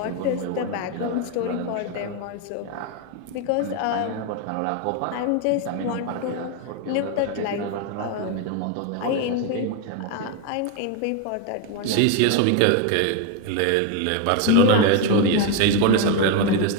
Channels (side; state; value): both; different; correlation 0.01